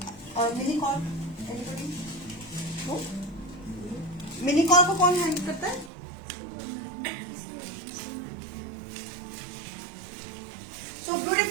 मिनीकॉर्न एनीबडी? मिनीकॉर्न को कौन हैंडल करता है? सो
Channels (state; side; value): drops out; left; at 5.9 s